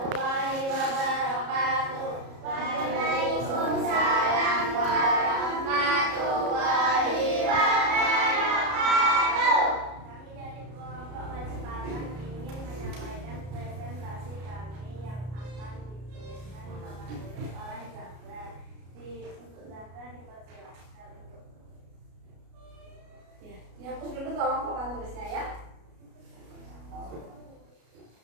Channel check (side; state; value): left; late; 33 ms